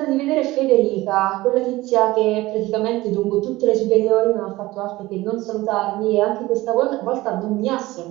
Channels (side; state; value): left; quieter; 18.7 dB